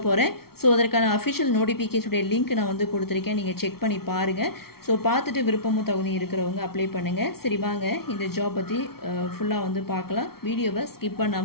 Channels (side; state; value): right; late; 0.94 ms